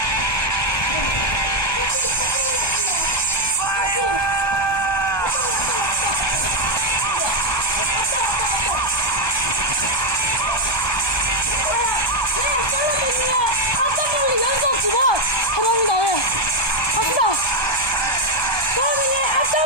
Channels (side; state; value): right; late; 1.2 ms